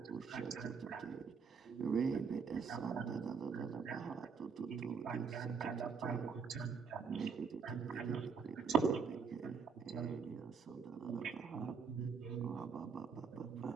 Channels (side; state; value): left; quieter; 5.7 dB